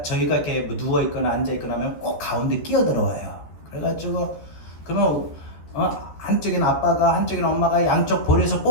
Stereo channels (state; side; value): late; right; 14 ms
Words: 저희가 이렇게 뭐 누워있거나 앉아있거나 하면 꼭 가운데 끼어들어와요. 그래가지고 그러면 한쪽엔 아빠가 한쪽엔 엄마가 양쪽 볼에서